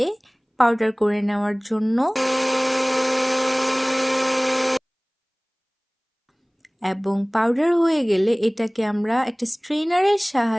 পাউডার করে নেওয়ার জন্য, এবং পাউডার হয়ে গেলে এটাকে আমরা একটা স্ট্রেনারের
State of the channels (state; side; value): identical; both; correlation 1.00